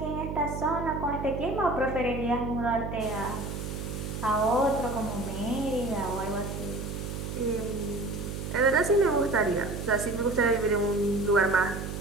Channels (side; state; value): right; noise; hum, 6 dB below the sound